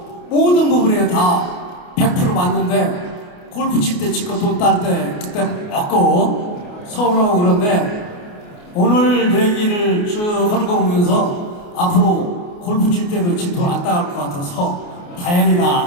모든 부분에 다 100% 맞는데 골프 칠 때 치고 돈 딸 때 그때 먹고 서운하고 그런데 오늘 얘기를 쭉 하는 거 보면서 앞으로 골프 칠 때도 지 돈 안 따갈 것 같아서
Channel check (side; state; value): right; late; 28 ms